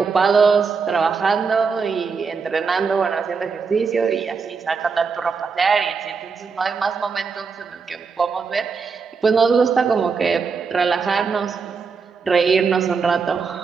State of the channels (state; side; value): quieter; left; 5.3 dB